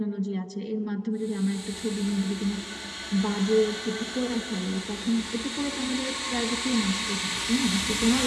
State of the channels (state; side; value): identical; both; correlation 1.00